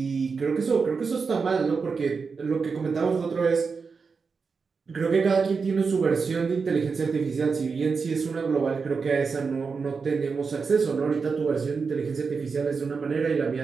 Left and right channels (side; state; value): left; quieter; 5.1 dB